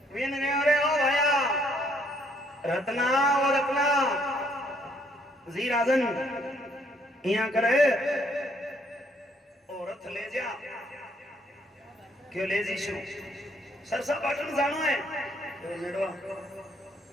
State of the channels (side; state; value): both; normal; correlation 0.67